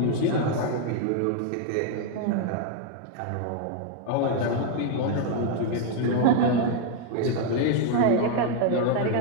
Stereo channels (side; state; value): both; different; correlation 0.01